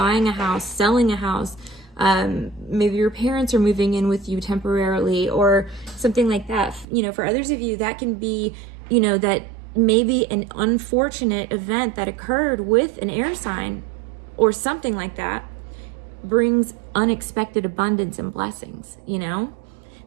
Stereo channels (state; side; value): drops out; left; at 6.9 s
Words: a house, selling a house, maybe your parents are moving in with you temporarily or something like that. You know, for others of you, that can be, you know, that maybe an unfortunate event that occurred with an air sign or something like that brings unexpected abundance and blessings, you know?